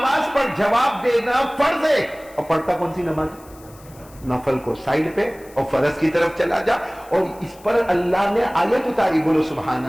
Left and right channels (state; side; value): noise; left; hiss, 25 dB below the sound